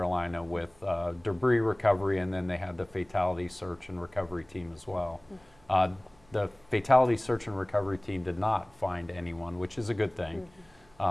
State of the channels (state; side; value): noise; right; hum, 30 dB below the sound